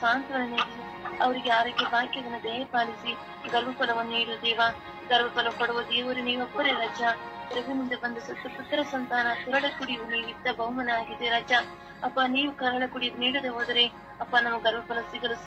ಸಾಂತ್ವನ ನೀಡಿ ಅವರಿಗೆ ಆರೋಗ್ಯ ಭಾಗ್ಯವನ್ನು ದಯೆ ಪಾಲಿಸಿ ಗರ್ಭಫಲವನ್ನು ನೀಡುದೇವ. ಗರ್ಭಫಲ ಕೊಡುವ ದೇವರು ನೀವೊಬ್ಬರೇ ರಜ. ಪ್ರಭುವಿನಿಂದ ಬಂದ ಸತ್ತು ಪುತ್ರ ಸಂತಾನ ಕರಳ ಕುಡಿಯುವ ನೀವಿದ್ದ ಬಹುಮನ ಆಗಿದೆ ರಜ. ಅಪ್ಪ ನೀವು ಕರಳ ಕುಡಿದು ನೀಡದೆ ಹೋದರೆ ಅಪ್ಪ ನಮ್ಮ ಗರ್ಭಫಲ ಸಿಗಲು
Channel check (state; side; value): identical; both; correlation 1.00